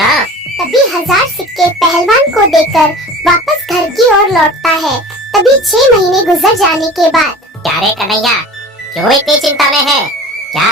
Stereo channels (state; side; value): normal; both; correlation 0.39